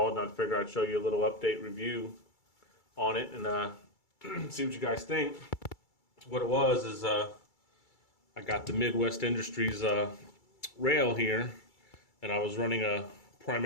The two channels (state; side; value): late; right; 2.3 ms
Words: and I figured I'd show you a little update review on it and see what you guys think. What it was is I got the Midwest Industries rail here, and I was running a